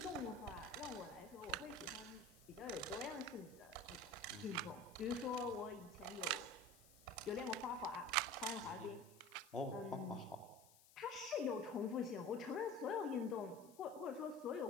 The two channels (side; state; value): left; noise; hiss, 23 dB below the sound